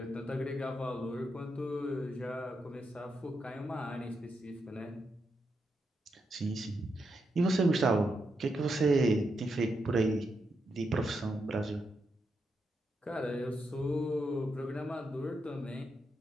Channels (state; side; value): normal; both; correlation 0.83